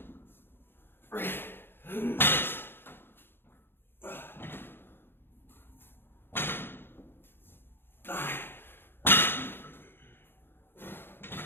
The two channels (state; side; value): late; right; 0.10 ms